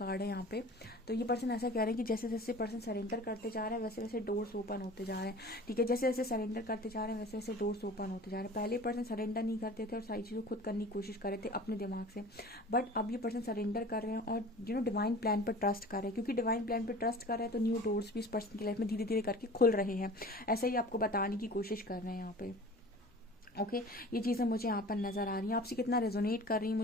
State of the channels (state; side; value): normal; both; correlation 0.42